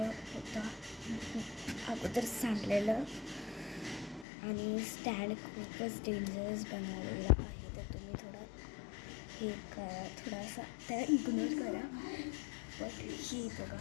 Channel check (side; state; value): right; drops out; at 4.2 s